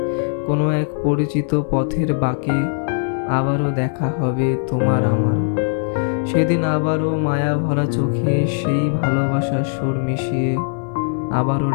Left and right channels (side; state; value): right; silent; 59 dB below the other